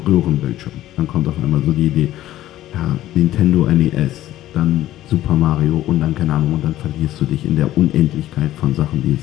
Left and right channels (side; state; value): right; quieter; 14.0 dB